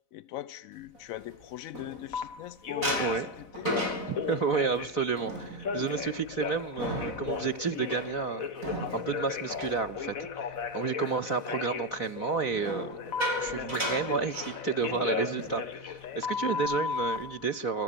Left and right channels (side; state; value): right; late; 4.0 ms